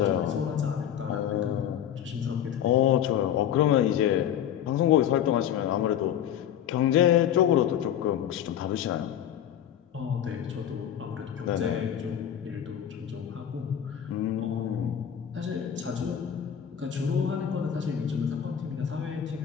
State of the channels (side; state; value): right; quieter; 9.8 dB